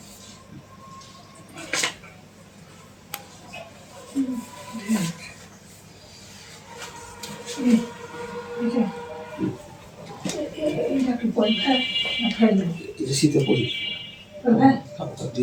শীতে পরি খাবারটা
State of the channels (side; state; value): both; identical; correlation 1.00